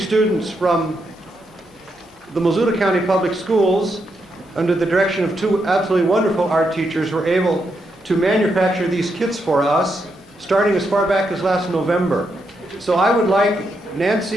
from the Missoula County Public Schools, under the direction of two absolutely wonderful art teachers, were able to manufacture these kits for us, starting as far back as last November. So I would like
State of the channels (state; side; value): normal; both; correlation 0.81